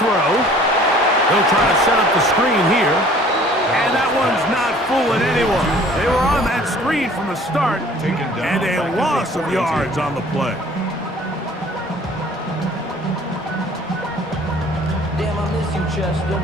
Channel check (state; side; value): normal; both; correlation 0.52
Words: They'll try to set up the screen here. And that one's not fooling anyone. They were on that screen from the start, and a loss of yards on the play. Damn, I miss you, Chester.